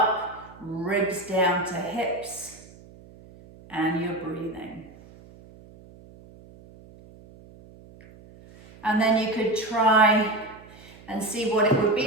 ribs down to hips, and you're breathing. And then you could try and see what it would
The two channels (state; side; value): noise; right; hum, 22 dB below the sound